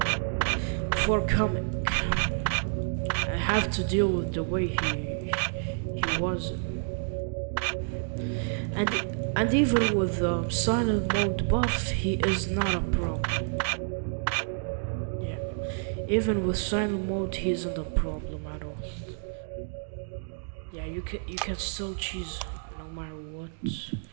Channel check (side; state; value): left; silent; digital silence